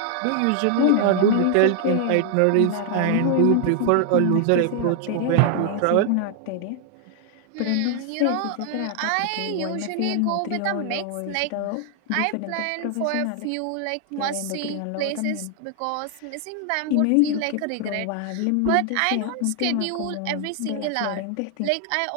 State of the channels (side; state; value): both; different; correlation 0.00